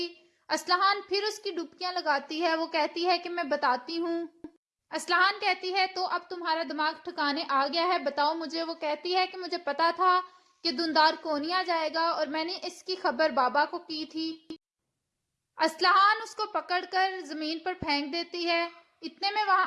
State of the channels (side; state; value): both; identical; correlation 1.00